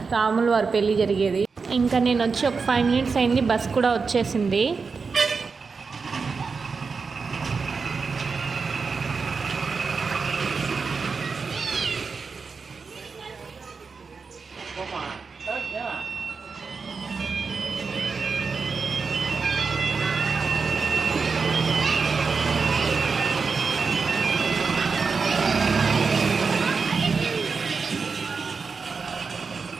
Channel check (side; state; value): left; quieter; 4.9 dB